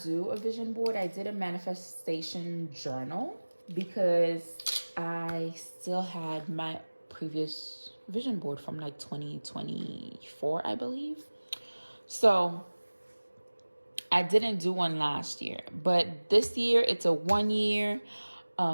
do a vision board. I did a manifestation journal because I still had my previous vision board from like 2024, I believe. So I didn't do one last year, but this year it's a 1 year.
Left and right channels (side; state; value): both; inverted; correlation -1.00